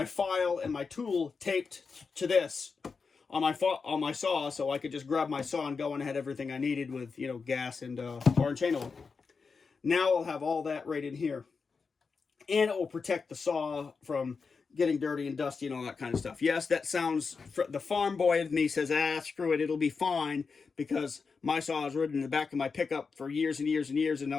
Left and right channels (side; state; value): right; quieter; 5.0 dB